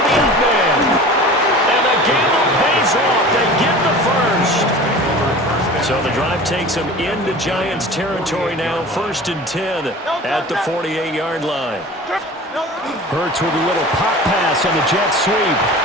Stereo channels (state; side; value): normal; both; correlation 0.38